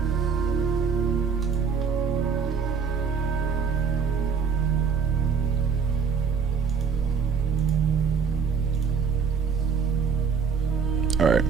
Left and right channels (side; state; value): left; quieter; 6.0 dB